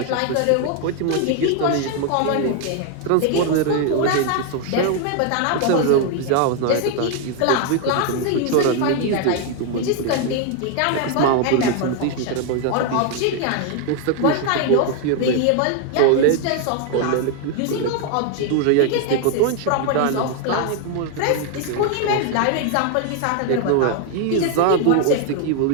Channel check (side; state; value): both; different; correlation 0.01